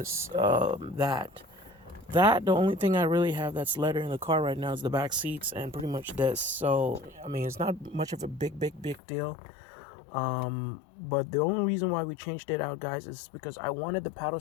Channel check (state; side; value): drops out; right; at 9.0 s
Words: that. The only thing I really have that's leather in the car right now is the back seats and pretty much this. So, I mean, it's not much of a big deal. But the only reason why we changed it out, guys, is because I wanted the paddle